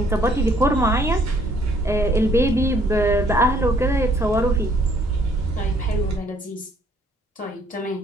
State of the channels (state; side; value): normal; both; correlation 0.63